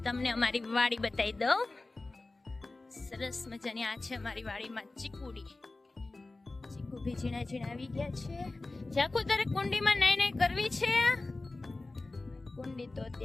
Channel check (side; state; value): right; quieter; 3.2 dB